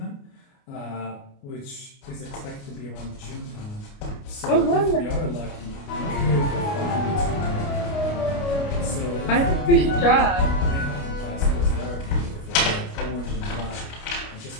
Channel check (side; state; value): right; late; 29 ms